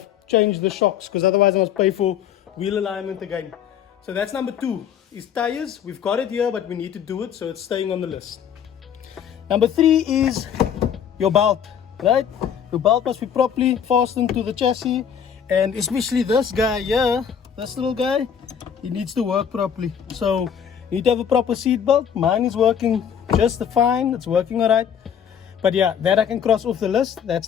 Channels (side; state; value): right; quieter; 8.2 dB